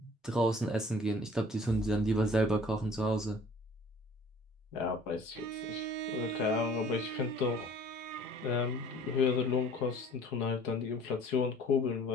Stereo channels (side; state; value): both; normal; correlation 0.51